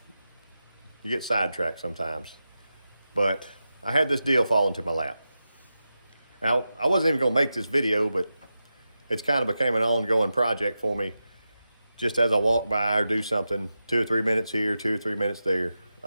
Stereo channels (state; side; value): inverted; both; correlation -0.91